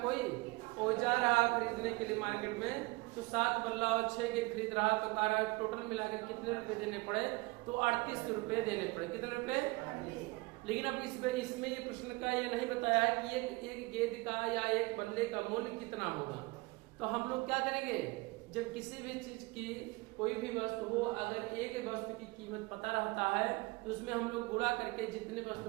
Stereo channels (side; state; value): left; quieter; 24.0 dB